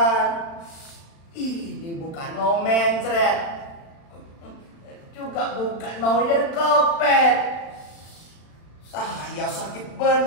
Ini bukan mau mencret. Juga bukan mau jadi kopet. Saya sakit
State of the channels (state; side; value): late; right; 35 ms